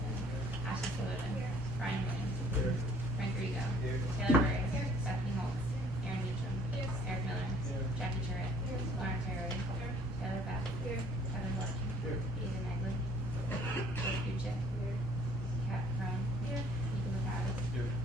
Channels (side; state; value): both; normal; correlation 0.57